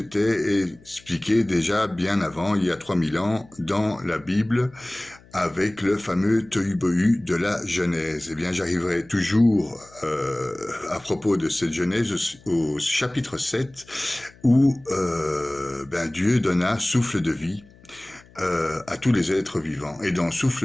expliqué déjà bien avant, il y a 3000 ans, dans la Bible, avec le fameux tohu-bohu de la Genèse. Eh bien, j'arriverai toujours à propos de cette Genèse au chapitre 7, où Dieu donna souffle de vie à tous les êtres vivants. Et dans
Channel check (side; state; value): left; noise; hum, 26 dB below the sound